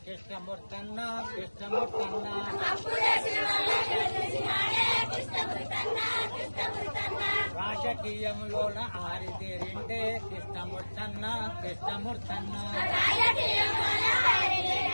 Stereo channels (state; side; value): inverted; both; correlation -1.00